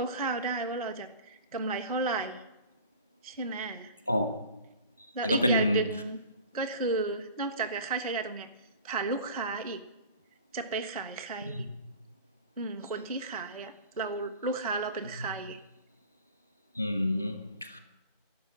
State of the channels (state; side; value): inverted; both; correlation -0.41